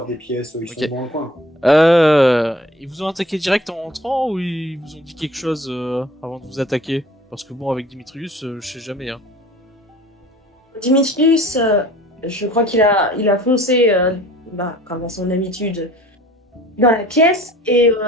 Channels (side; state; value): both; normal; correlation 0.48